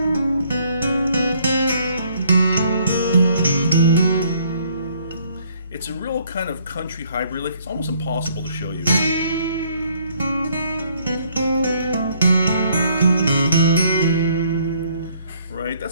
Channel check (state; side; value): inverted; both; correlation -0.64